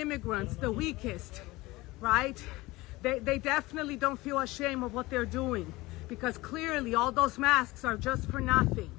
the weakest, right? They definitely don't feel ashamed of what they're doing, because clearly all those masks are just for nothing.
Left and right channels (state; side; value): quieter; right; 20.5 dB